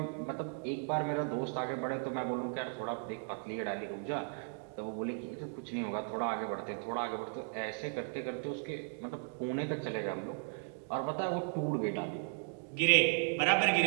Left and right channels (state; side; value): silent; left; 54 dB below the other